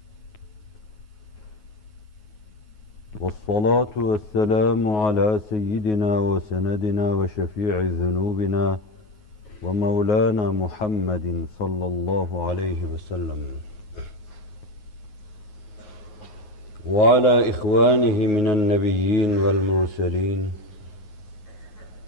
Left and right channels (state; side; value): late; right; 9.4 ms